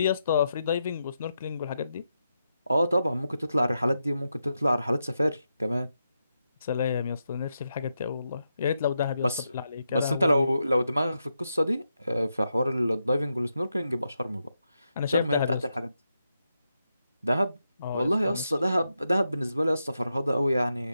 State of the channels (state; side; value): inverted; both; correlation -0.85